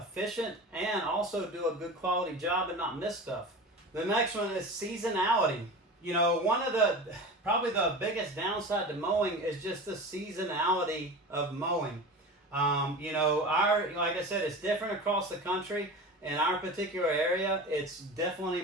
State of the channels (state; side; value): normal; both; correlation 0.32